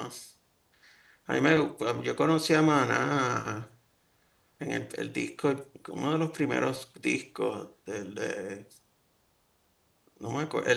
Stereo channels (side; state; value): both; identical; correlation 1.00